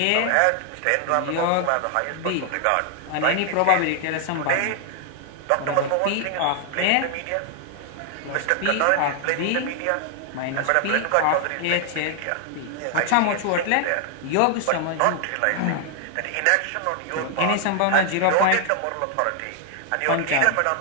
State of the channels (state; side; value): different; both; correlation 0.00